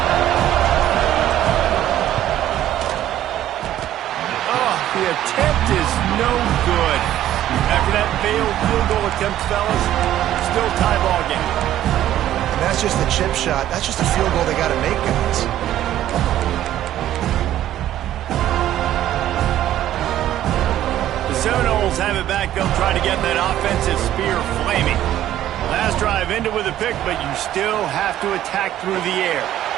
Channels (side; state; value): left; quieter; 12.6 dB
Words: The attempt is no good. After that failed field goal attempt, fellas, still tie ball game. And that's just the chip shot. That's just a field goal they got to make, guys. The Seminoles have it back. They'll try to get that offensive spear flaming. Last drive ended with a pick, but you still have to attack through the air.